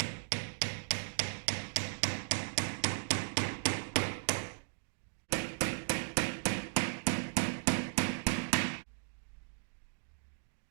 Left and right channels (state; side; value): silent; left; digital silence